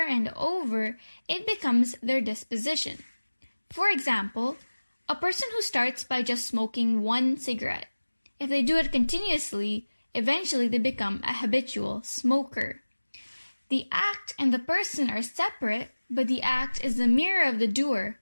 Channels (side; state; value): both; inverted; correlation -1.00